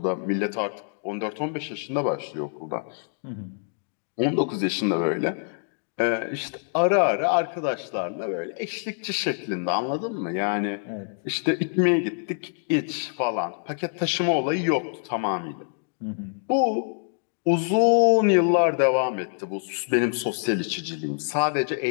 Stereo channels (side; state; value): right; silent; 60 dB below the other